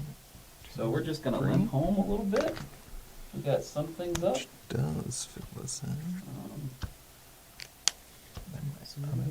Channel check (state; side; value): identical; both; correlation 1.00